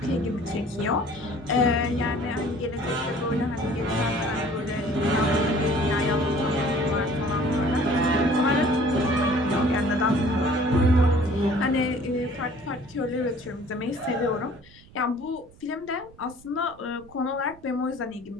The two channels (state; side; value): noise; right; rumble, 24 dB below the sound